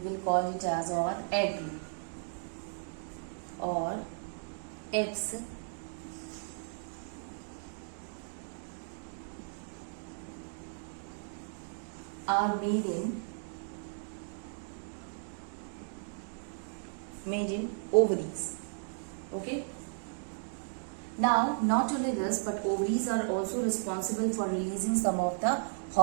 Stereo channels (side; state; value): left; silent; digital silence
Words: call it as or egg or eggs, are made in ovaries. Okay. Now, not only this, but ovaries are also responsible for releasing some of the